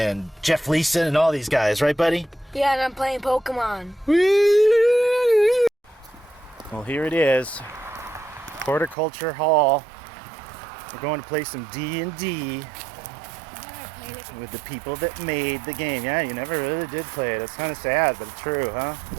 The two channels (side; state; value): left; drops out; at 9.0 s